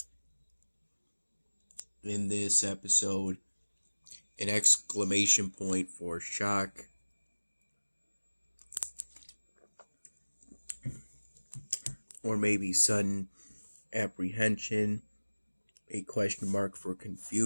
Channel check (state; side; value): inverted; both; correlation -1.00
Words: In this episode, an exclamation point for shock, or maybe sudden apprehension, a question mark for